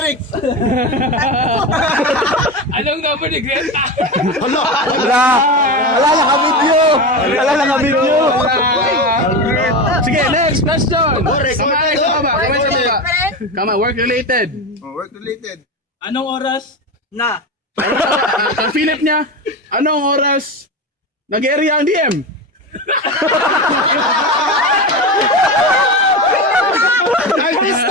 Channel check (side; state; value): both; normal; correlation 0.21